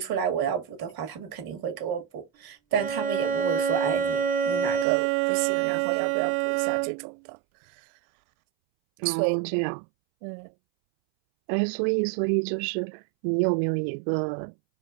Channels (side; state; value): left; drops out; at 4.9 s